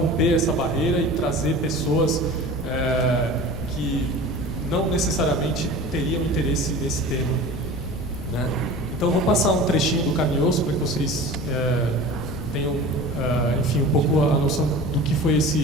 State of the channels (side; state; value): left; noise; rumble, 10 dB below the sound